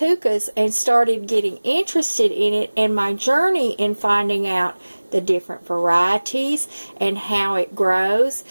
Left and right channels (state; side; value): inverted; both; correlation -1.00